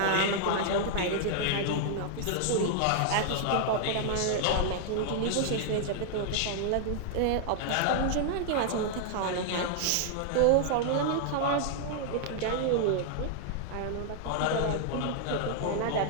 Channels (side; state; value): both; different; correlation 0.00